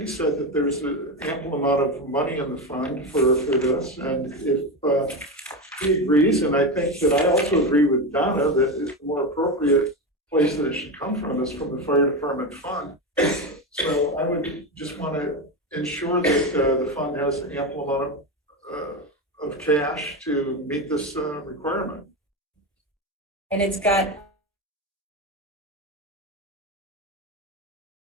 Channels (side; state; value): both; normal; correlation 0.16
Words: said that there's an ample amount of money in the fund for this, and if he agrees, and I think that I also agree with Donna that the more appropriate place that it should come from is from the fire department fund. So I would just want to ensure that the fund has an ample amount of cash to meet this requirement. And it's got